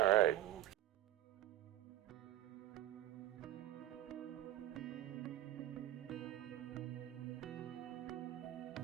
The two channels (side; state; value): left; quieter; 13.7 dB